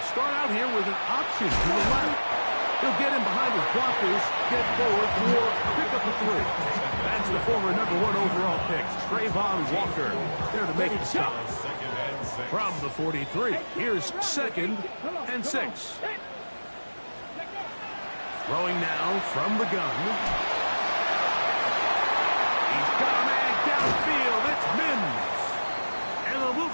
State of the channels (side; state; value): both; inverted; correlation -1.00